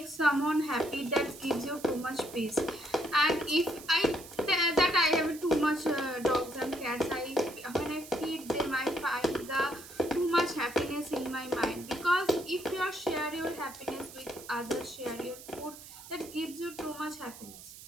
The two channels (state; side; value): noise; right; hiss, 16 dB below the sound